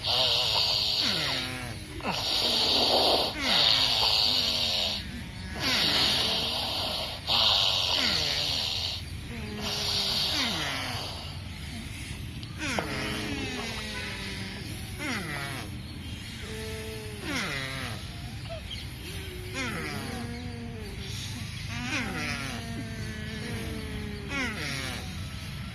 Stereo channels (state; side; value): identical; both; correlation 1.00